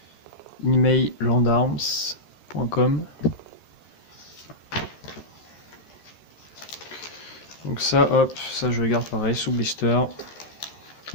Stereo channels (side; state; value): right; late; 13 ms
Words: emailandarms.com. Donc ça, hop, ça je le garde pareil sous blister.